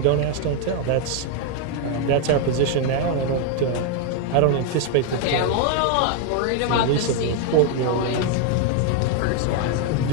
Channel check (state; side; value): different; both; correlation 0.01